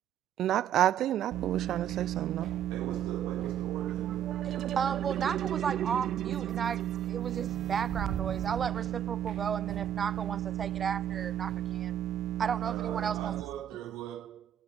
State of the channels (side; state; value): left; quieter; 10.1 dB